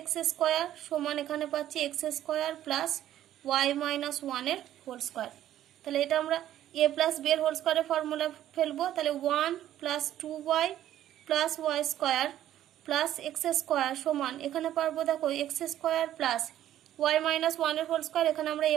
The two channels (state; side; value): quieter; left; 12.2 dB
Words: x² সমান এখানে পাচ্ছি x² প্লাস ওয়াই মাইনাস 1 এর হোল স্কোয়ার। তাহলে এটা আমরা a প্লাস b এর হোল স্কোয়ারের ফর্মুলা ফেলবো। তাহলে 1 plus 2y plus y square plus x² সমান এখানে পারবো দেখো x² প্লাস ওয়াই মাইনাস 1 এর হোল স্কোয়ার, এখানে আমরা a